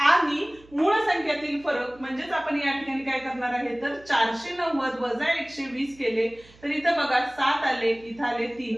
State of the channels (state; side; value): noise; right; hum, 26 dB below the sound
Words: मूळ संख्यातील फरक म्हणजेच आपण या ठिकाणी काय करणार आहे तर 490 वजा 120 केले तर इथं बघा 7 आले इथं आले 3